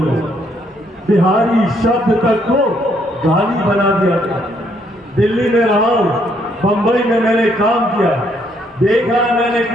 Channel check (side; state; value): both; normal; correlation 0.70